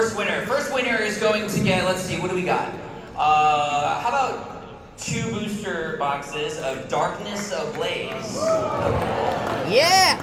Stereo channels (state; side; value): identical; both; correlation 1.00